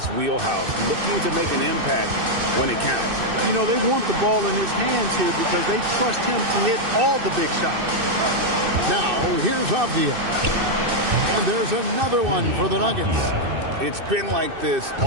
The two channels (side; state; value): left; late; 2.6 ms